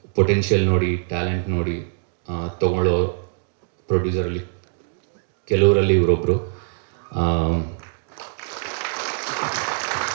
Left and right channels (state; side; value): silent; left; digital silence